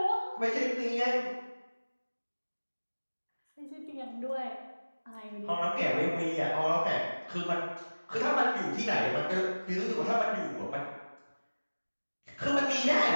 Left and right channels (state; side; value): inverted; both; correlation -1.00